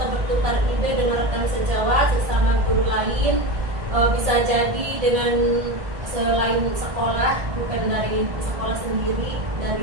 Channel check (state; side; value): late; left; 1.6 ms